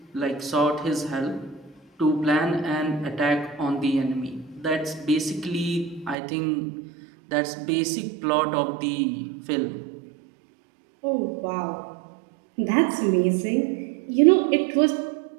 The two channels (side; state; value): left; drops out; at 6.2 s